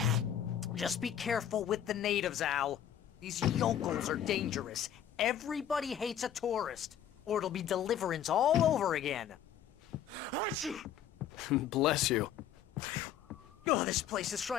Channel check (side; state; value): right; quieter; 9.5 dB